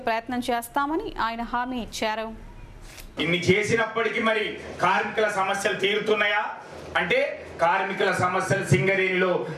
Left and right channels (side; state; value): both; identical; correlation 1.00